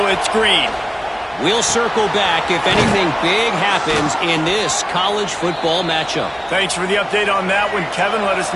it's Green. We'll circle back if anything big happens in this college football matchup. Thanks for the update on that one, Kevin. Let us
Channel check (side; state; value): both; identical; correlation 1.00